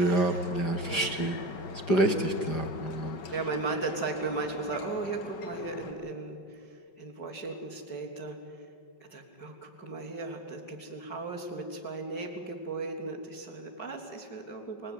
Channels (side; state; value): right; late; 5.4 ms